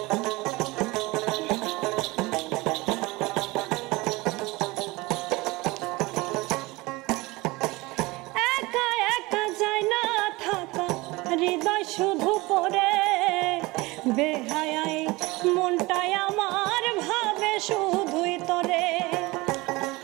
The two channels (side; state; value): left; quieter; 22.3 dB